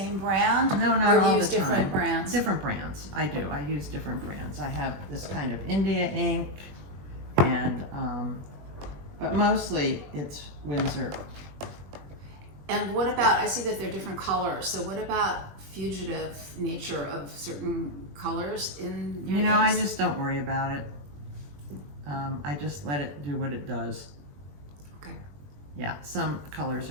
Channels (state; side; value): late; left; 21 ms